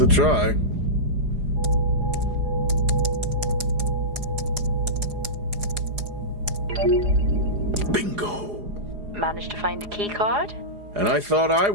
try. Bingo. Managed to find a key card? And I thought I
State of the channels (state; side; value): late; left; 4.8 ms